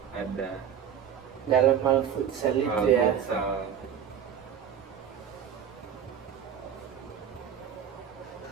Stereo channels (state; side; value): quieter; left; 8.6 dB